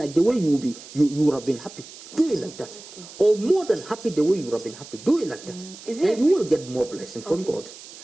the way you would have been happy. Do it like that, or more than happy the way you would have been happy. Do it like that, and you will get more blessing from God.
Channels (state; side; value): noise; right; hiss, 17 dB below the sound